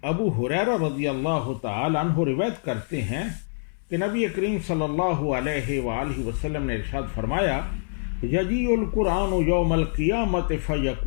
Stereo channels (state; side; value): silent; right; digital silence